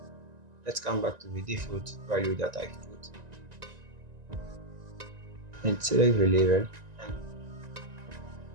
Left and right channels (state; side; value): late; left; 1.9 ms